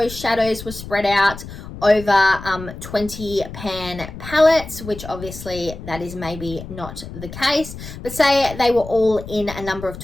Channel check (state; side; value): noise; left; rumble, 12 dB below the sound